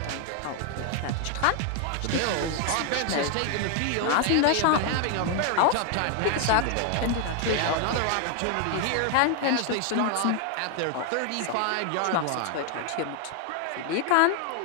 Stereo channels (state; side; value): different; both; correlation 0.00